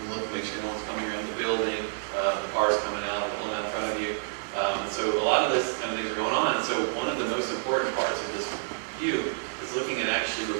look, make sure no one's coming around the building, cars coming out, pulling out in front of you. So a lot of this kind of things are going on. So one of the most important parts of this view is looking at actually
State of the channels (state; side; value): silent; left; digital silence